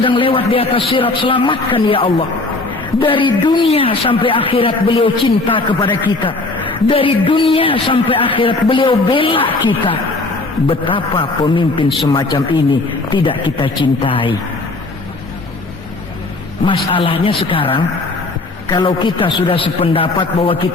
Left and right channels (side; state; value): right; quieter; 3.1 dB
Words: lewat di atas sirat, selamatkan ya Allah. Dari dunia sampai akhirat beliau cinta kepada kita. Dari dunia sampai akhirat beliau bela kita. Betapa pemimpin semacam ini tidak kita cintai. Masalahnya sekarang, kalau kita sudah sependapat bahwa